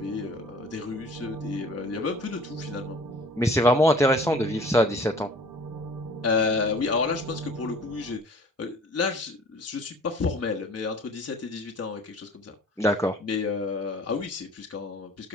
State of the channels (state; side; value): normal; both; correlation 0.48